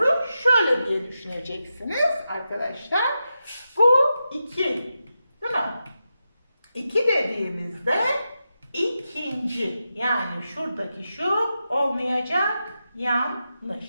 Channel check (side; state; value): both; inverted; correlation -0.89